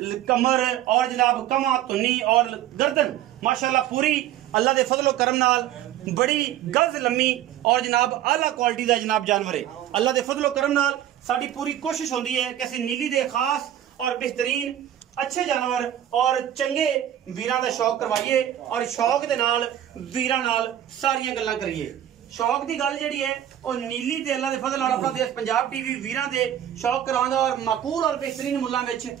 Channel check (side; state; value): left; quieter; 11.6 dB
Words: कमर और जनाब कमा धुन्नी और गर्दन माशाल्लाह पूरी अल्लाह दे फजलो करम नाल बड़ी गज लम्मी और जनाब आला क्वालिटी का जनाब जानवर है। अल्लाह दे फजलो करम नाल साडी पूरी कोशिश होंदी है कि असीं नीली दे खास और बेहतरीन अच्छे जानवर और चंगे वीरां दा शौक करवाइए और शौक दे नाल वीरां नाल सारियां गल्लां करिए। शौक की गल जी है और नीली ते अल्लाह दे फजल नाल अपना देश पंजाब टीवी वीरां दे शौक करांदा और माकूल और बेहतरीन मुल्लां विच